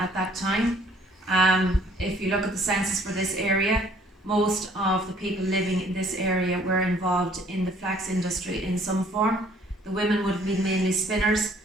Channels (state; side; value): normal; both; correlation 0.59